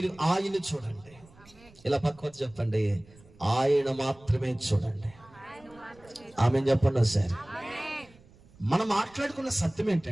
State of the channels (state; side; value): noise; right; rumble, 26 dB below the sound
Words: ఆయన్ని చూడండి. ఇలా పక్కన చెప్పండి, ఆయన మాత్రమే చూడండి. ఆమె చెప్పండి సార్. మనం మాట్లాడుకున్న సత్యం